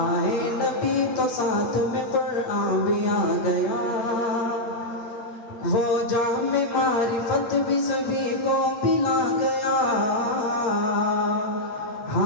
نبی تو ساتھ میں قرآن بھی آ گیا، وہ جام معرفت بھی سبھی کو پلا گیا،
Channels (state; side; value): late; right; 8.6 ms